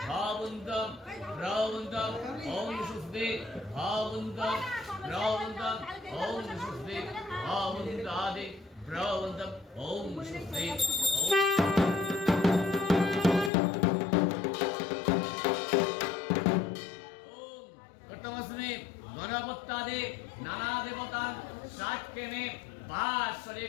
भावन्तं प्रवन्तं ओं सुस्ते भावन्तं प्रवन्तं ओं सुस्ते भावन्तादि ব্রবন্তম ওম সুস্থে গণপত্যাদি নানা দেবতান সাক্ষেনে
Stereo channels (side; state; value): right; drops out; at 13.5 s